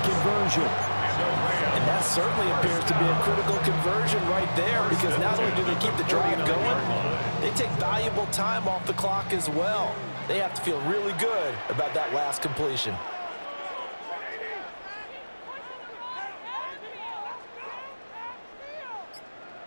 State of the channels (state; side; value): inverted; both; correlation -1.00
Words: conversion. And That certainly appears to be a critical conversion right there, because not only do they keep the drive going, they take valuable time off the clock as well. They have to feel really good about that last completion.